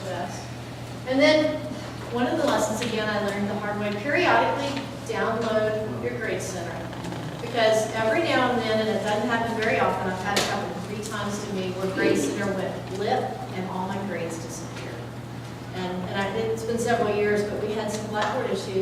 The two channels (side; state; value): both; identical; correlation 1.00